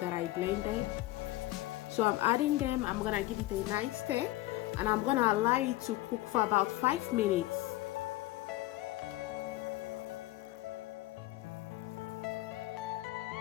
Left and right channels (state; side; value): quieter; right; 17.5 dB